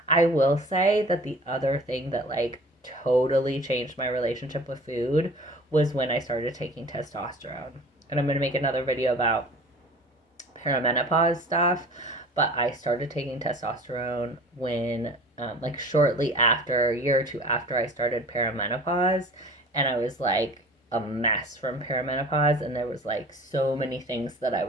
I will say that the other thing that like totally changed my relationship with food was when I started taking testosterone. And I'm going to make another video about perimenopause stuff. But I started taking testosterone when, like, shortly after, a year or two after I started perimenopause. And I was like a mess from perimenopause. And there was like so many things that I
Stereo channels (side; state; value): both; normal; correlation 0.43